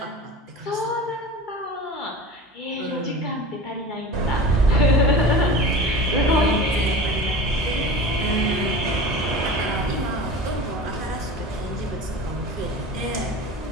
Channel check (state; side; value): normal; both; correlation 0.34